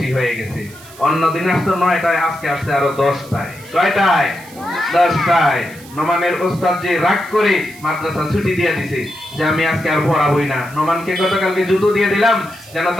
হয়ে গেছে। অন্য দিন আসতো 9টায়, আজকে আসছে আরো 10টায়। কয়টায়? 10টায়। নোমানের ওস্তাদ যে রাগ করে মাদ্রাসা ছুটি দিয়ে দিছে যে আমি আজকে আর পড়াবই না। নোমানকে গতকালকে জুতো দিয়ে দিলাম যেন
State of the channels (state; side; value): noise; right; hiss, 20 dB below the sound